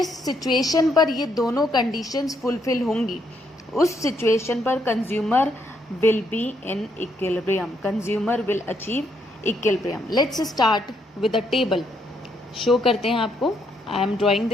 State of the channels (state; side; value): normal; both; correlation 0.74